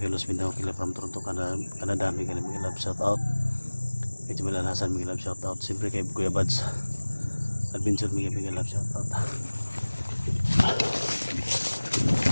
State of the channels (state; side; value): inverted; both; correlation -1.00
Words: Los Mindanao, kay from Toronto, Canada, big love shout out. Kay Jamil Alhasan, big love shout out. Siyempre kay Kuya Bads Adventure, big love shout out.